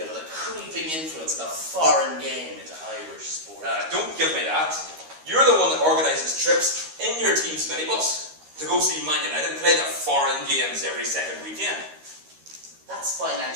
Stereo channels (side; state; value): left; late; 13 ms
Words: of the creeping influence of the foreign game into Irish sport. Don't give me that. You're the one that organises trips in your team's minibus to go see Man United play the foreign games every second weekend. That's